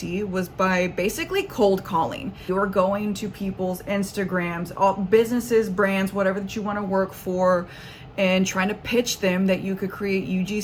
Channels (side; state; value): both; identical; correlation 1.00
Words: was by basically cold calling. You're going to people's Instagrams, all businesses, brands, whatever that you want to work for, and trying to pitch them that you could create